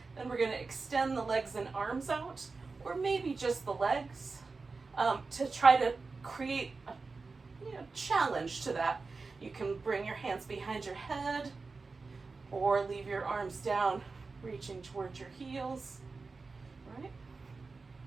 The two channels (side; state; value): left; quieter; 4.1 dB